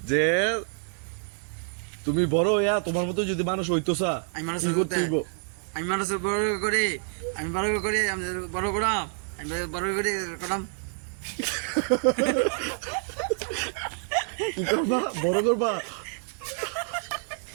যে তুমি বড় ইয়া, তোমার মতো যদি মানুষ হইতোসা আমি মানুষ কি করতে হইব? আমি মানুষ বড় করে আমি বড় করে আমি বড় করাম আমি বড় করে করাম কি করবা? বড় করবা?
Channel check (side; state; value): left; silent; 60 dB below the other